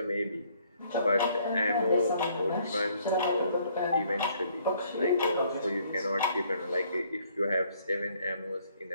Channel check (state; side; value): inverted; both; correlation -0.64